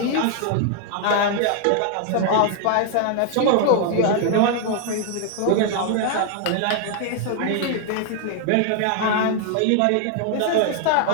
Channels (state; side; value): different; both; correlation 0.00